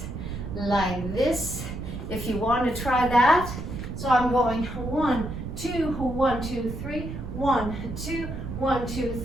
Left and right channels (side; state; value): right; noise; rumble, 7 dB below the sound